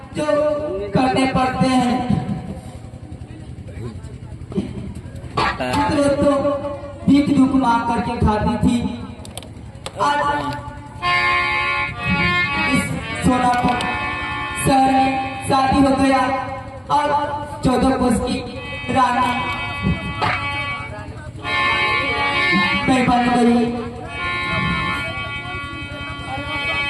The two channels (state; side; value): identical; both; correlation 1.00